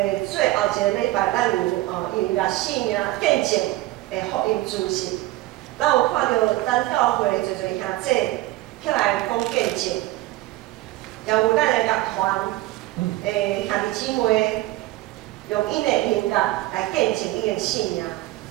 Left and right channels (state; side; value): quieter; left; 17.6 dB